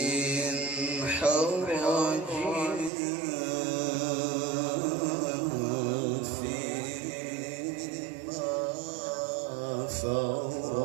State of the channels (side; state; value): left; drops out; at 2.9 s